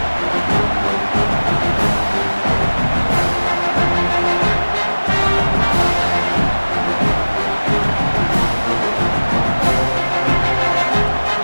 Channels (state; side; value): inverted; both; correlation -1.00